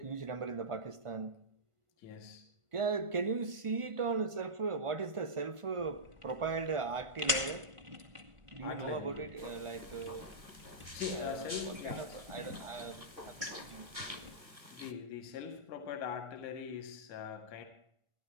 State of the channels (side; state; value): left; late; 1.4 ms